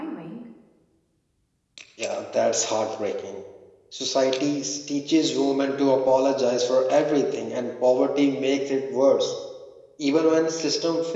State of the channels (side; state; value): both; identical; correlation 1.00